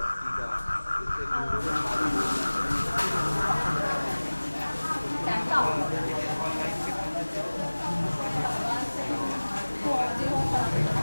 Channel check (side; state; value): both; inverted; correlation -1.00